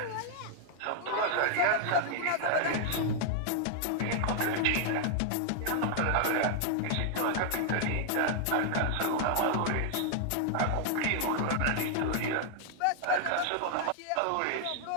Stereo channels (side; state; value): both; different; correlation 0.00